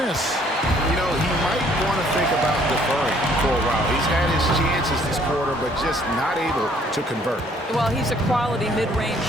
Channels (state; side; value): normal; both; correlation 0.62